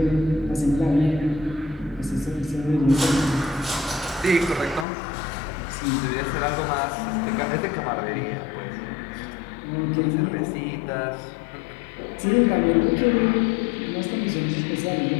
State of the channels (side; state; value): right; drops out; at 4.9 s